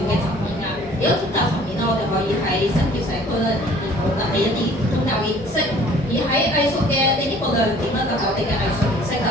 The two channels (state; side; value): normal; both; correlation 0.53